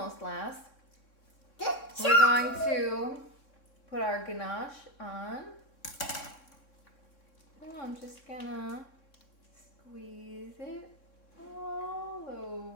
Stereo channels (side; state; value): right; late; 3.6 ms